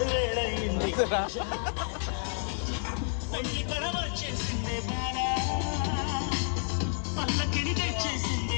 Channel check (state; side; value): silent; right; 58 dB below the other